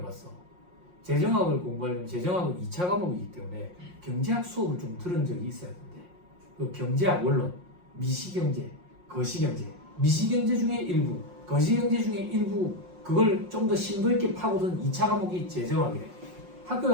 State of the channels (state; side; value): late; left; 5.6 ms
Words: 재정학을 공부하려면 재정학은 2차 과목이기 때문에 경제학 수업을 좀 들은 적이 있어야 되는데, 그 경제학 원론, 미시경제, 거시경제, 미시경제 중에 일부, 거시경제 중에 일부, 그걸 좀 더 심도 있게 파고든 2차 과목이 재정학이래. 학교